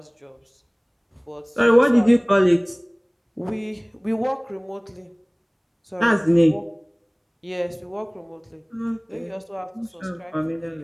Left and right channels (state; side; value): identical; both; correlation 1.00